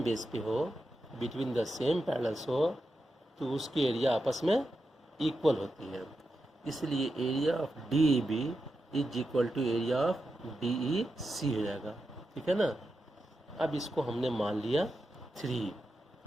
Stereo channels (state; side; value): normal; both; correlation 0.88